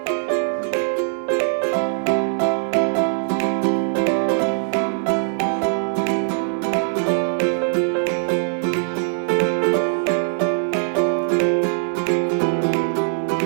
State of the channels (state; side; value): silent; left; 59 dB below the other